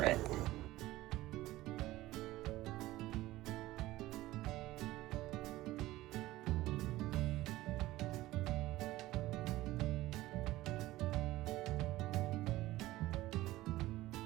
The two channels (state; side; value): quieter; left; 17.1 dB